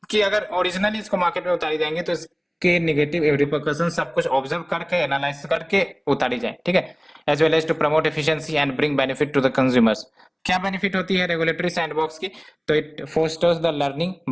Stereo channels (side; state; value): both; identical; correlation 1.00